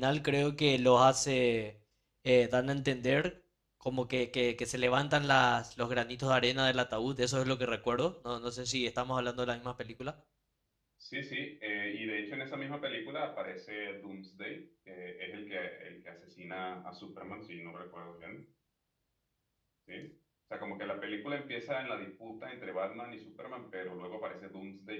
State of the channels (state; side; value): identical; both; correlation 1.00